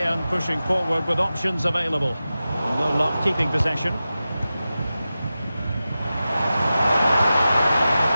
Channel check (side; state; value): both; inverted; correlation -0.94